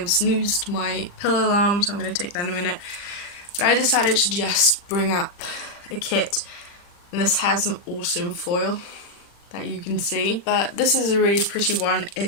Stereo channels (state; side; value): late; right; 40 ms